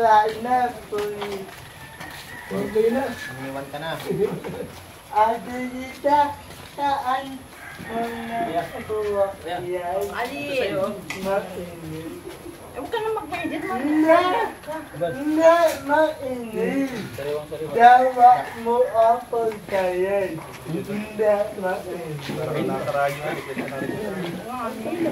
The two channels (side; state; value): both; identical; correlation 1.00